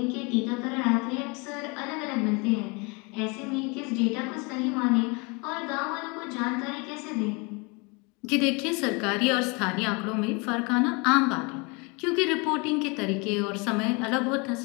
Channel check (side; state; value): right; quieter; 29.5 dB